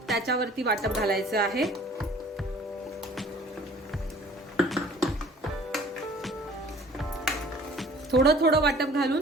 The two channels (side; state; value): both; normal; correlation 0.51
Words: त्याच्यावरती वाटप घालायचं आहे. थोडं थोडं वाटप